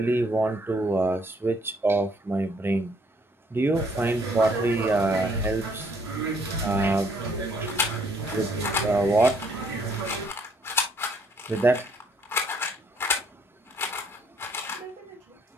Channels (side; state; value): both; normal; correlation 0.66